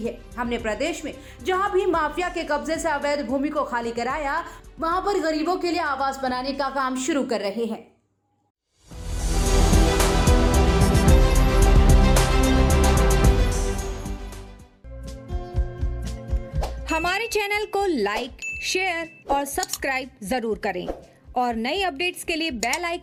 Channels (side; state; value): both; identical; correlation 1.00